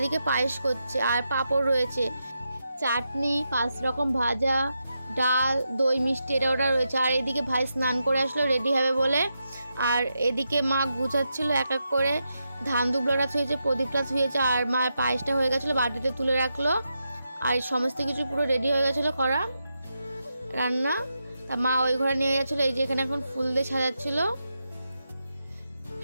পায়েস করছে, আর পাঁপড় রয়েছে, চাটনি, 5 রকম ভাজা, ডাল, দই, মিষ্টি এটা ওটা রয়েছে। আর এদিকে ভাই স্নান করে আসলো রেডি হবে বলে। আর এদিকে মা গুছাচ্ছিল এক এক করে, ধান দুবলাটা ছুঁয়েছে, প্রদীপটা ছুঁয়েছে, আর মায়ের পায়েসটা হয়ে গেছিলো, বাটিতে তুলে রাখলো। আর সমস্ত কিছু পুরো রেডি হয়ে গেছিলো করা রান্না। তা মা ওই ঘরে নিয়ে গেছিলো। এই যে এখানে এখন ফুল দিয়ে সাজাচ্ছিল,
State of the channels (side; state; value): both; inverted; correlation -0.86